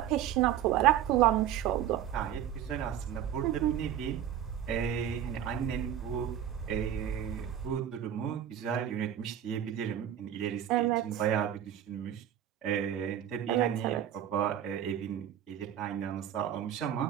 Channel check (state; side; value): quieter; left; 10.5 dB